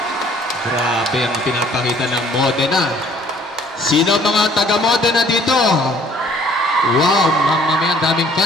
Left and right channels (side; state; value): both; normal; correlation 0.57